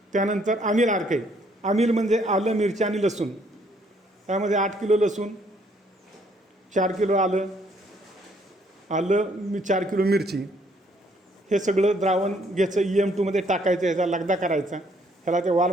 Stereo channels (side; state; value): both; normal; correlation 0.66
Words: त्यानंतर आमिल आर्क आहे. आमिल म्हणजे आलं, मिरची आणि लसूण. त्यामध्ये 8 किलो लसूण, 4 किलो आलं, 4 किलो मिरची, हे सगळं द्रावण घ्यायचं, EM2 टाकायचं, ह्याचा लगदा करायचा, ह्याला त्या